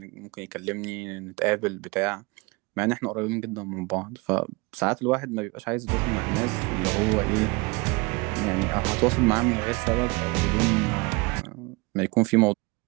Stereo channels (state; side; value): quieter; left; 26.7 dB